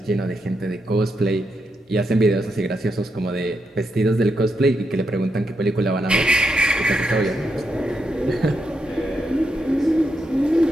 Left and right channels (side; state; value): both; normal; correlation 0.83